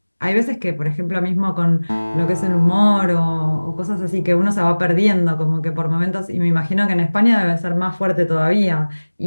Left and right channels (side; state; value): both; inverted; correlation -1.00